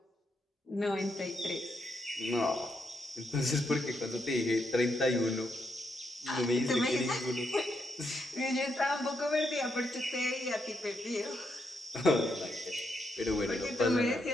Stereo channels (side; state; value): both; normal; correlation 0.80